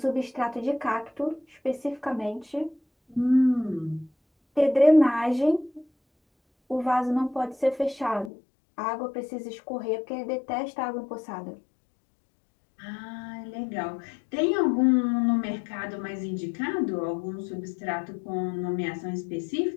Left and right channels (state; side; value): drops out; right; at 8.3 s